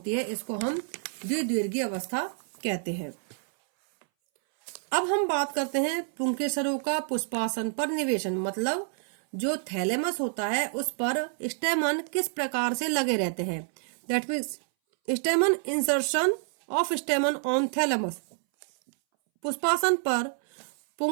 है इसको हम द्विदीर्घी अवस्था कहते हैं। अब हम बात करते हैं पुंकेसरों का पुष्पासन पर निवेशन, मतलब जो थैलेमस होता है उस पर स्टेमन किस प्रकार से लगे रहते हैं। That means stamen insertion of stamen on thalamus. पुष्पासन पर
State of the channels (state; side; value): silent; left; 59 dB below the other